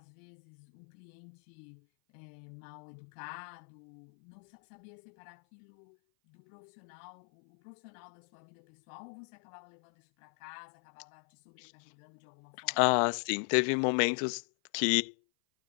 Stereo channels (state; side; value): silent; right; 53 dB below the other